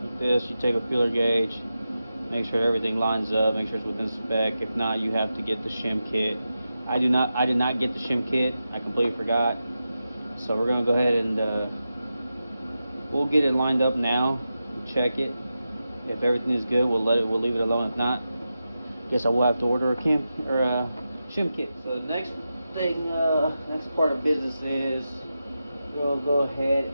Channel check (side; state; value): both; inverted; correlation -0.90